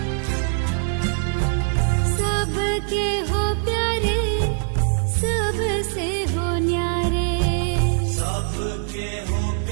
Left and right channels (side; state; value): left; silent; digital silence